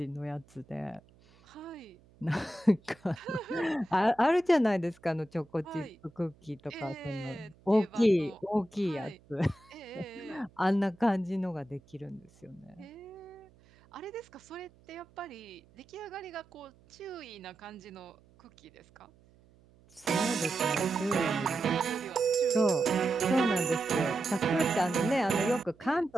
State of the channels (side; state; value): right; noise; hum, 28 dB below the sound